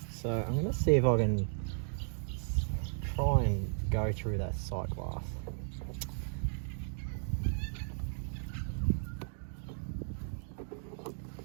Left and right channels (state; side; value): silent; left; digital silence